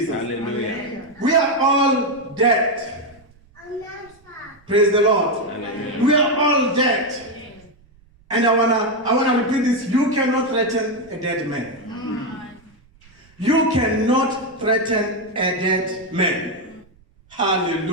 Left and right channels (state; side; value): noise; right; rumble, 30 dB below the sound